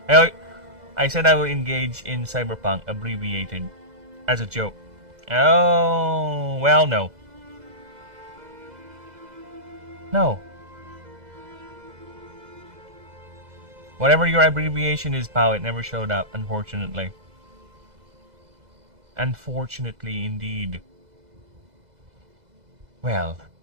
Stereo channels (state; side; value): late; left; 2.0 ms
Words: I said I will engage in Cyberpunk, abbreviated, as a joke. Oh, well, no. No. Whatever your abbreviation is, pal, it never showed up, unfortunately. Unfortunately, indeed. Well,